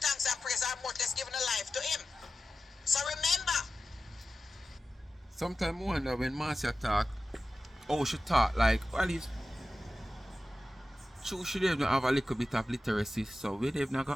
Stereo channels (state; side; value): normal; both; correlation 0.94